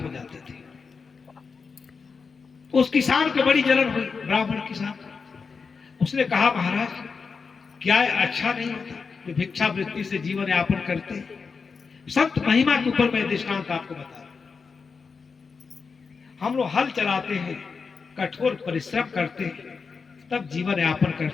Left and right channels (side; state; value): right; quieter; 5.2 dB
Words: जाते थे। उस किसान को बड़ी जलन हुई, ब्राह्मण किसान। उसने कहा, महाराज क्या अच्छा नहीं होता कि भिक्षावृत्ति से जीवन यापन करते? संत महिमा के ऊपर मैं दृष्टांत आपको बता रहा हूं। हम लोग हल चलाते हैं, कठोर परिश्रम करते हैं, तब जीवन यापन